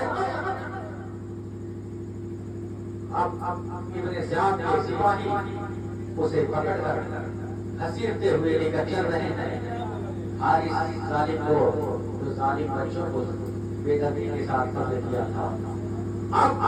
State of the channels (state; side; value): identical; both; correlation 1.00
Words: اب ابن زیاد کے سپاہی اسے پکڑ کر گھسیٹتے ہوئے لے کر چل رہے ہیں، حارث ظالم کو، جو ظالم بچوں کو بے دردی کے ساتھ قتل کیا تھا، اب